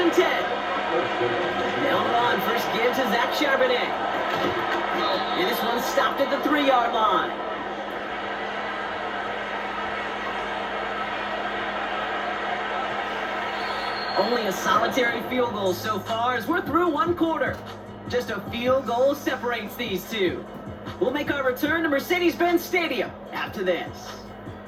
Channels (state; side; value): identical; both; correlation 1.00